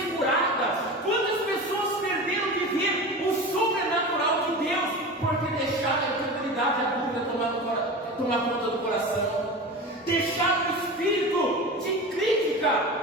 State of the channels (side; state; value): both; normal; correlation 0.30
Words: curadas? Quantas pessoas perderam de ver o sobrenatural de Deus porque deixaram a incredulidade e a dúvida tomar conta do coração? Deixaram o espírito de crítica